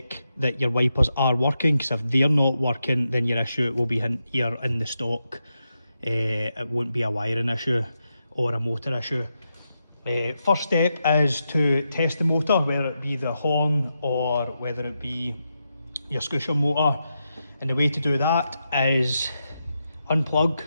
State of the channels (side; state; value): both; inverted; correlation -0.86